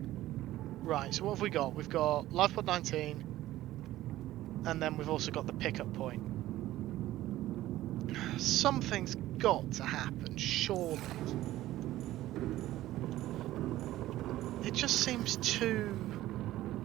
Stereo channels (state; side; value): quieter; left; 15.1 dB